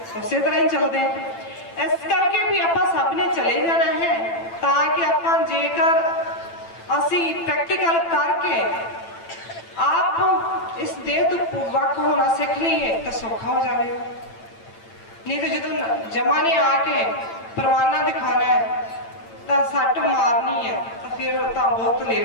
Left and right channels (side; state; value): right; late; 8.9 ms